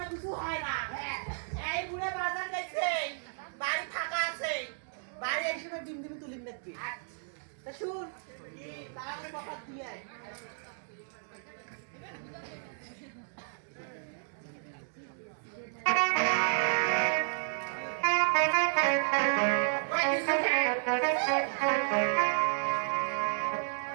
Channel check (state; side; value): silent; left; digital silence